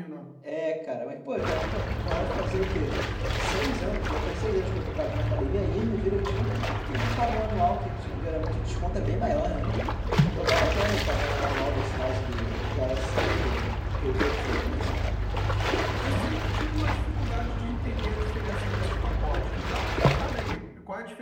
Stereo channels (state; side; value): identical; both; correlation 1.00